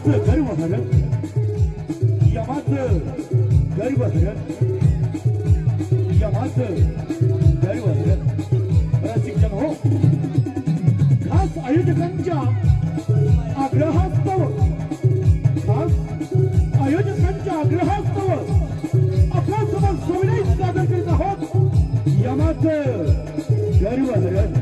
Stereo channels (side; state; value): both; identical; correlation 1.00